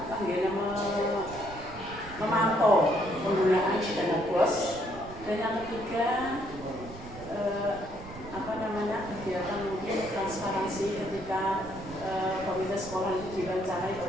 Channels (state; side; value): noise; right; rumble, 15 dB below the sound